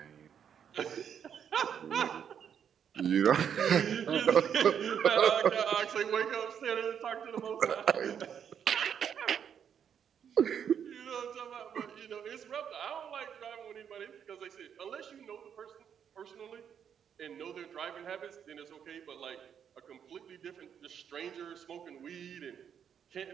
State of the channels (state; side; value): quieter; left; 8.2 dB